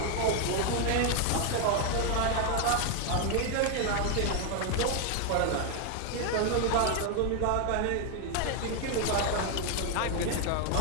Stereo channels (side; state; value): both; different; correlation 0.01